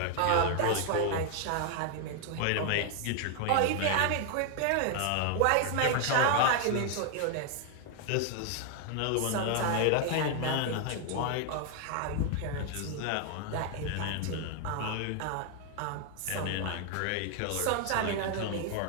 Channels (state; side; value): different; both; correlation 0.00